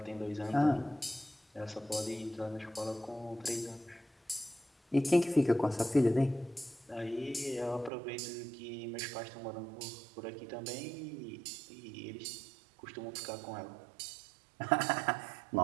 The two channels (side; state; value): left; drops out; at 7.9 s